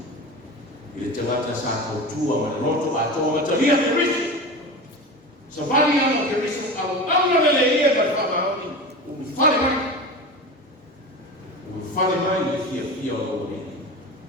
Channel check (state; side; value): normal; both; correlation 0.29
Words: Ile te wata sa tautua ma loto ato ma te lia Kirisi. Sa vali ama Kirisi au lele ia ma whamaoni. Umi whale mai. Umi whale mai i fia o lo ni.